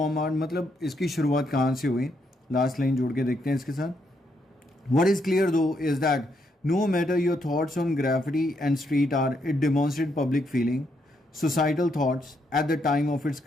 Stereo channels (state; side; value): normal; both; correlation 0.77